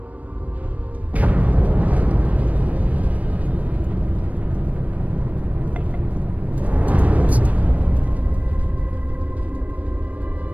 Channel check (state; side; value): late; left; 0.070 ms